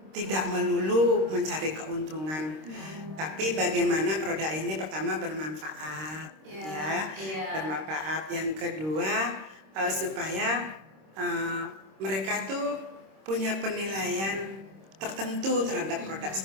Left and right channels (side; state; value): left; late; 26 ms